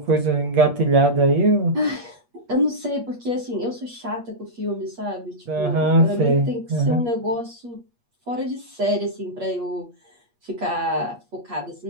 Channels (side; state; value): left; late; 8.4 ms